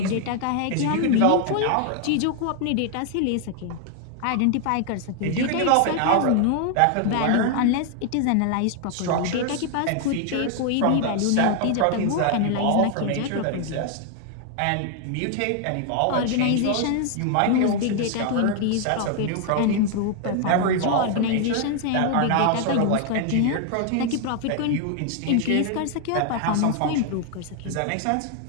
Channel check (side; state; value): both; different; correlation 0.00